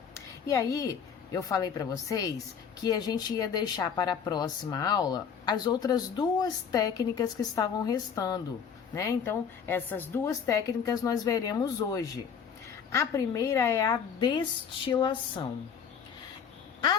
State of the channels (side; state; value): right; quieter; 7.0 dB